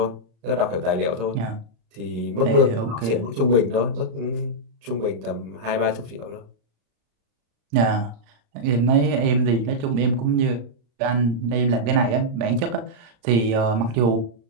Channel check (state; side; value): late; left; 35 ms